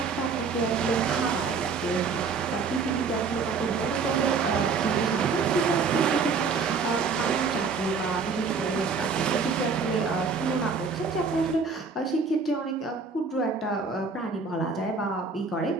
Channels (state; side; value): quieter; left; 5.0 dB